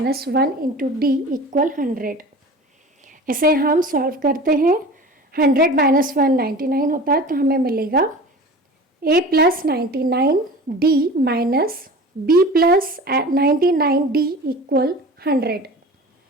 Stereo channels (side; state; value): both; normal; correlation 0.37